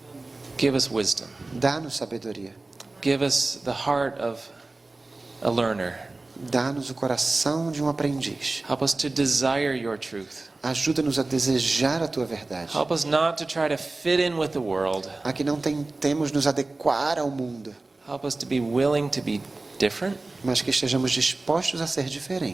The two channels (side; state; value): left; quieter; 3.2 dB